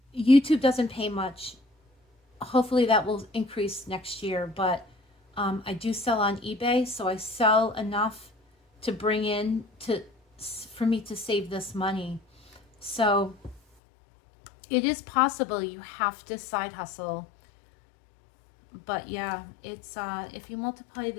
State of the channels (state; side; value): drops out; right; at 13.6 s